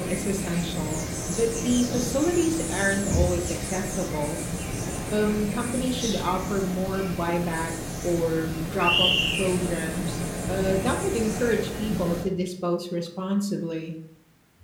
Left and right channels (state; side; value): identical; both; correlation 1.00